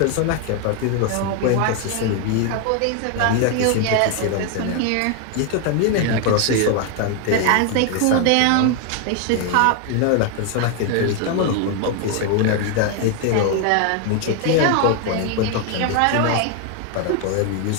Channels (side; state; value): both; different; correlation 0.01